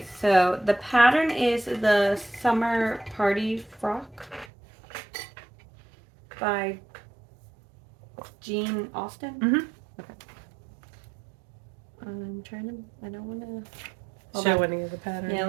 so the pattern is the Summer Party Frock. by Jean Austen. Mm-hmm. Okay. I'm trying to. I don't want to show any of the pattern. Yeah,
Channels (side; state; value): left; drops out; at 4.5 s